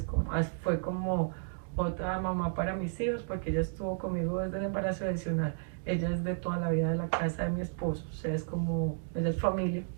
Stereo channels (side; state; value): left; silent; digital silence